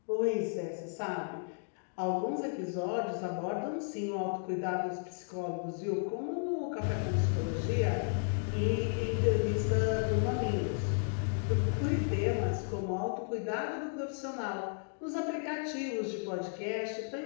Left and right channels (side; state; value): right; silent; digital silence